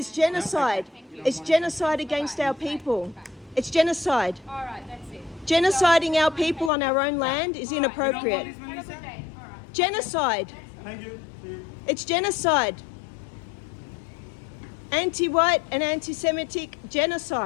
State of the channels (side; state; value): right; drops out; at 6.7 s